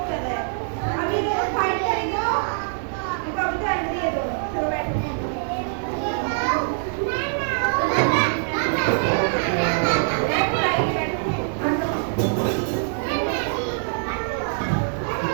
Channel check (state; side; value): silent; left; 59 dB below the other